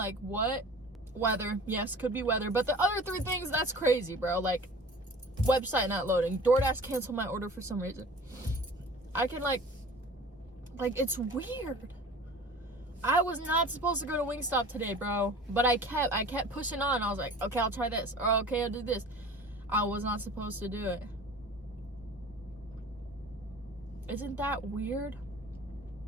what? Weather. Yes, could be weather. But the other three things, that's crazy, bro. Like, website not loading. DoorDash canceled my order for some reason. I can, like, it's weird. I was not supposed to go to Wingstop today, bro. But I kept pushing on. I was like, okay, I'll try this. Or, okay, I'll do this. I was not supposed to do it. Isn't that weird?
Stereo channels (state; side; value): normal; both; correlation 0.42